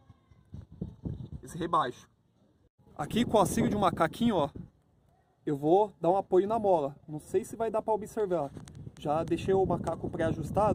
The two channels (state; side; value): identical; both; correlation 1.00